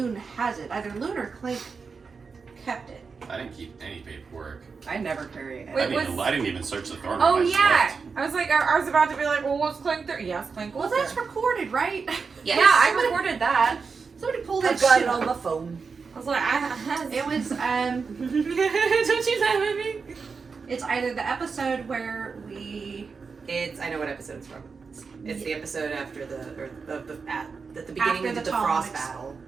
has it. Either Loon or Clank kept it. I didn't keep any paperwork. I never carry it. Wait, I didn't even search the throne room. Oh I just yeah. left. I was like, I was about to be like, well, what's Clank there? Yes, Clank Well, was that's there. recorded, right? Yes. Yeah, I recorded that. Somebody pull that I've got shit it on up. my phone. I was like, It was Don't you laugh at me? It's either the episode where we I know what episode it's from. It's the episode after at the beginning After of the the Tom Frost ex- battle.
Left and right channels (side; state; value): left; quieter; 5.1 dB